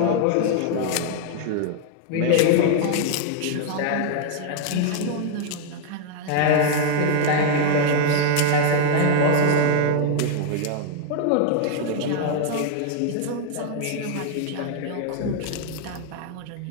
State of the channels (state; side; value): different; both; correlation 0.00